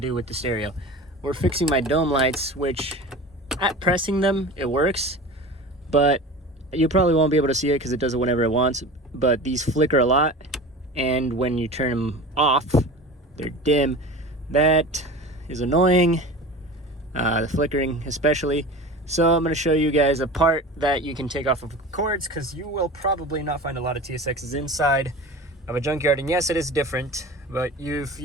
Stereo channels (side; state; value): both; normal; correlation 0.34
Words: with the stereo. We're fixing my dome lights, which at pressing them, it works, but you probably won't be able to see it because it does it whenever it wants, but these flicker a lot, and when you turn them off, they're dim. That is annoying, the flickering especially. So I'm going to show you guys a part that you can take off of cords, because you will probably not find a lot of TSXs inside of a junkyard. And yes, it is different, but if